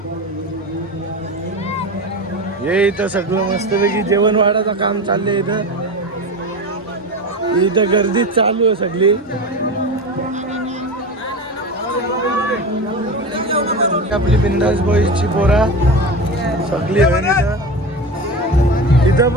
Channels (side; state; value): both; normal; correlation 0.26